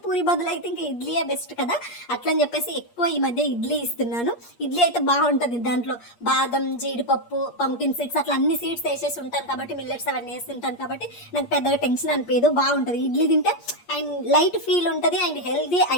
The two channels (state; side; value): late; right; 8.5 ms